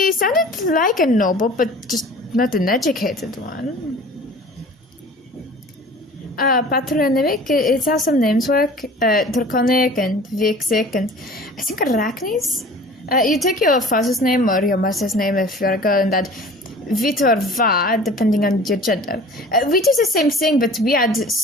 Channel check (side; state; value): both; normal; correlation 0.44